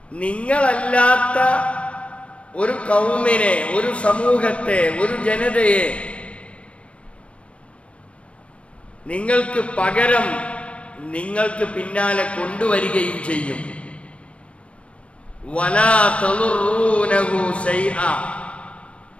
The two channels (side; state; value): right; late; 0.061 ms